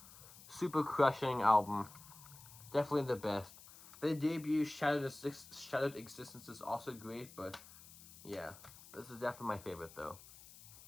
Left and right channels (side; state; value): left; noise; hiss, 19 dB below the sound